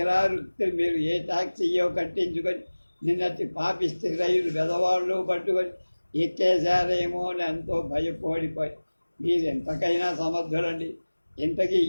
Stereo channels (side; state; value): both; inverted; correlation -1.00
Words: మీరు ఏ టాక్సీయో కట్టించుకొని నిన్నటి పాపిస్తే రైలు వెదవాళ్ళు పట్టుకొని ఎక్కేశారేమో అని ఎంతో భయపడిపోయి. మీరు ఎంతకైనా సమర్థులండి. ఇంతకీ